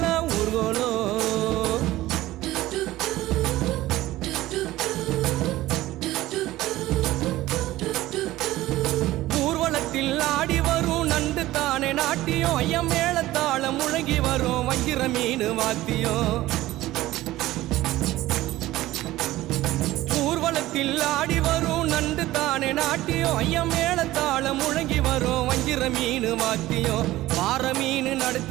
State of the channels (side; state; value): left; quieter; 16.5 dB